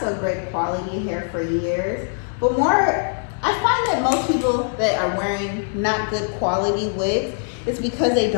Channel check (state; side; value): silent; right; digital silence